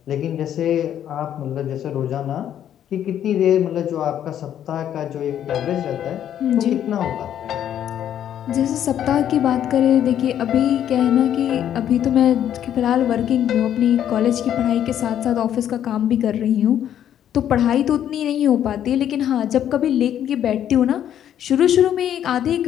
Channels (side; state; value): right; quieter; 10.3 dB